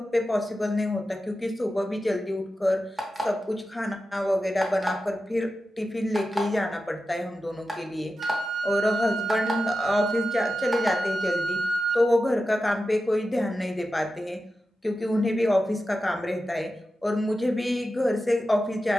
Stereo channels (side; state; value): both; normal; correlation 0.92